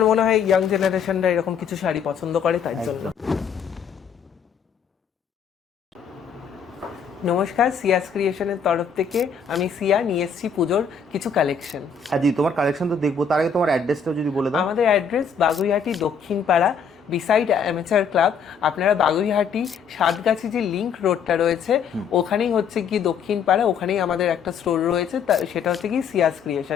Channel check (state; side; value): quieter; right; 6.2 dB